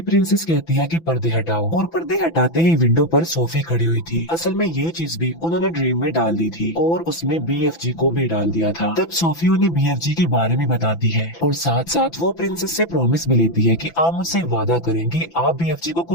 प्रिंसेस कहती है कि पर्दे हटाओ, और पर्दे हटाते ही विंडो पर सोफी खड़ी हुई थी। असल में ये चीज भी उन्होंने ड्रीम में डाल दी थी, और उसमें बीएफजी को भी डाल दिया था। तब सोफी उन्हें बीएफजी के बारे में बताती है, और साथ साथ वो प्रिंसेस से प्रॉमिस भी लेती है कि आप मुझसे वादा करें कि आप बीएफजी को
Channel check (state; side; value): late; right; 6.0 ms